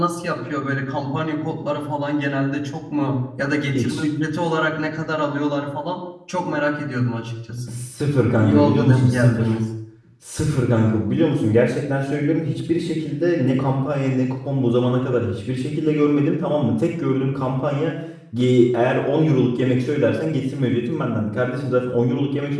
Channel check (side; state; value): both; identical; correlation 1.00